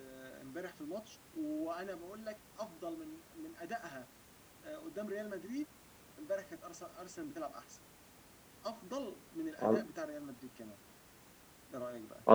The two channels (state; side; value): identical; both; correlation 1.00